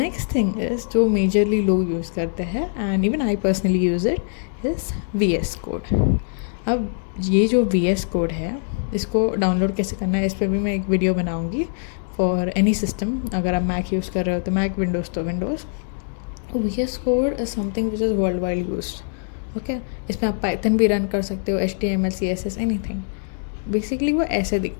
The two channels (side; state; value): right; silent; digital silence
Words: थिंग इज़ जो मेजरली लोग यूज़ करते हैं and even I personally use it is VS code. अब ये जो VS कोड है इसको डाउनलोड कैसे करना है इस पर भी मैं एक वीडियो बनाऊँगी फॉर एनी सिस्टम। अगर आप मैक यूज़ कर रहे हो तो मैक, विंडोज़ तो Windows. VS code is something which is world wide used. Okay, इसमें आप पाइथन भी रन कर सकते हो, HTML, CSS, एनीथिंग। बेसिकली वो ऐसे